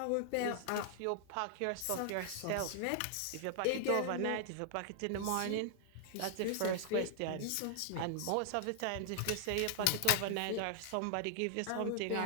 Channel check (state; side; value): different; both; correlation 0.00